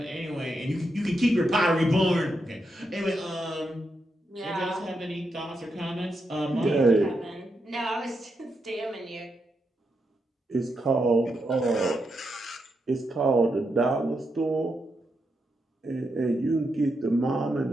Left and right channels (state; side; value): normal; both; correlation 0.83